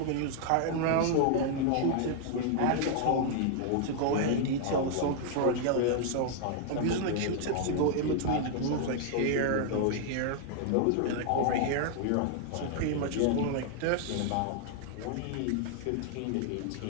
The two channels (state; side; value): different; both; correlation 0.00